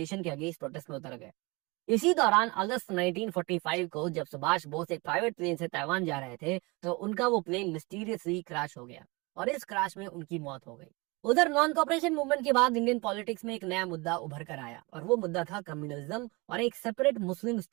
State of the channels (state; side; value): quieter; left; 26.0 dB